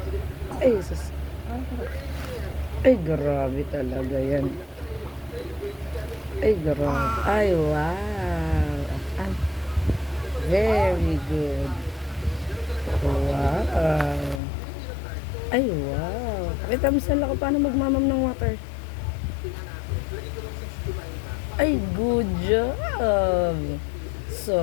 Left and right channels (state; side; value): drops out; right; at 14.4 s